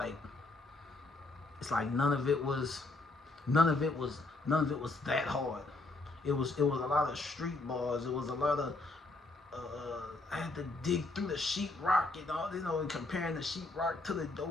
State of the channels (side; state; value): right; quieter; 3.1 dB